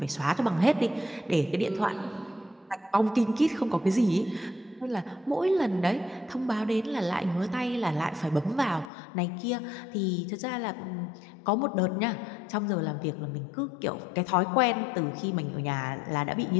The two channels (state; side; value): drops out; right; at 8.9 s